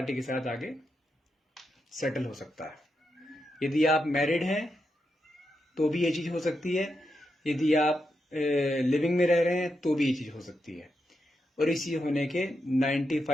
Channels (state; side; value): normal; both; correlation 0.85